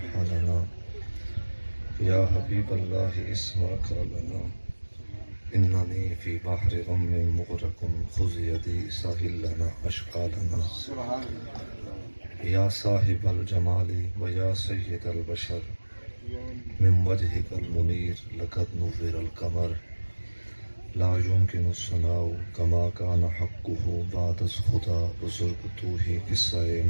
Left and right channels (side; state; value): both; inverted; correlation -1.00